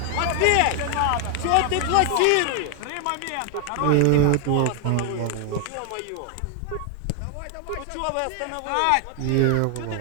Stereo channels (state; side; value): different; both; correlation 0.00